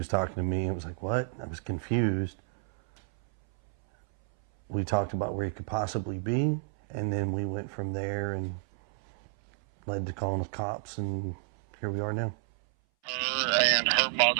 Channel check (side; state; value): left; silent; 58 dB below the other